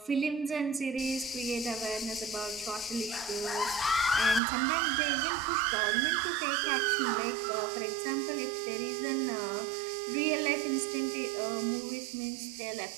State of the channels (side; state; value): left; drops out; at 4.4 s